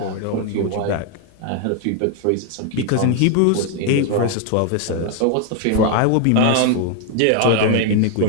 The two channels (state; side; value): different; both; correlation 0.01